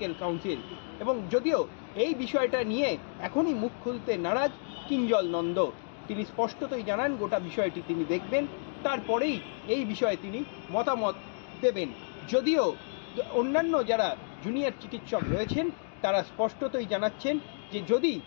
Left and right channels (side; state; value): right; silent; digital silence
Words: কাউন্সিল। এবং যদিও এই বিষয়টা নিয়ে এখনই মুখ খুলতে নারাজ কিঞ্জল নন্দ, তিনি স্পষ্টতই জানান গোটা বিষয়টি তিনি দেখবেন, তারপরেই এই বিষয়ে তিনি মতামত দেবেন। যদিও অন্যান্য যারা জুনিয়র চিকিৎসক রয়েছেন তারা স্পষ্টতই জানাচ্ছেন যে যদি